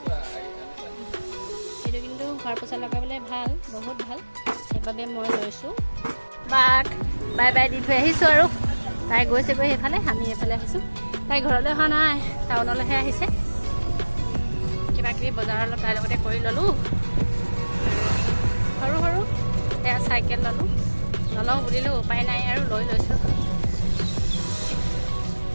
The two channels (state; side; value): inverted; both; correlation -1.00